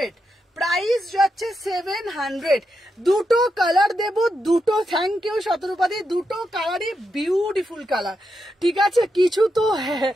প্রাইস যাচ্ছে 700। দুটো কালার দেব, দুটো। থ্যাংক ইউ শতরূপাদি, দুটো কালারই বিউটিফুল কালার। ঠিক আছে, কিছু তো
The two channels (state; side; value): normal; both; correlation 0.84